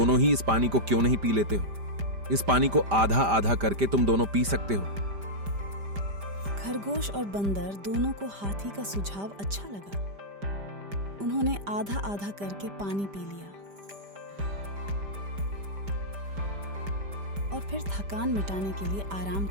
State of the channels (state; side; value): late; left; 5.0 ms